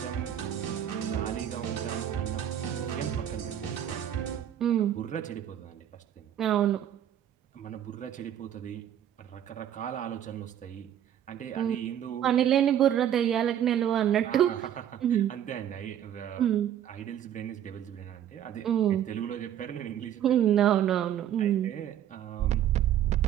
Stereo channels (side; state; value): left; quieter; 10.5 dB